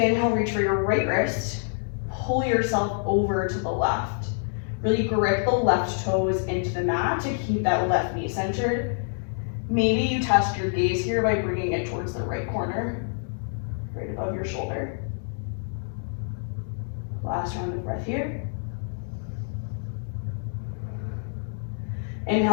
inhale, reach for your right wrist. Pull yourself over to the left. Really grip the left toes into the mat to keep that left knee centered. Maybe you test your gaze here by bringing it towards the right corner, right above your shoulder. Last round of breath here.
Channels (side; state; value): right; silent; digital silence